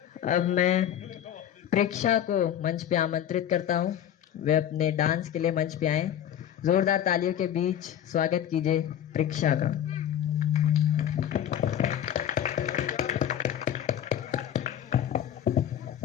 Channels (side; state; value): right; quieter; 10.3 dB